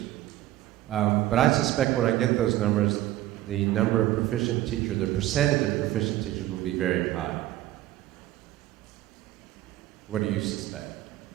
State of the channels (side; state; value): left; quieter; 15.1 dB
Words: But I suspect when I get those numbers, the number of proficient teachers, the percentage of proficient teachers will be very high. What do you suspect?